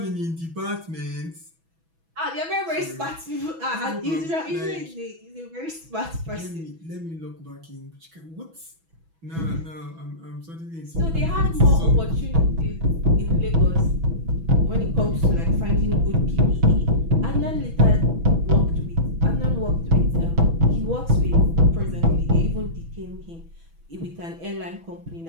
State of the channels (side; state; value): left; late; 6.1 ms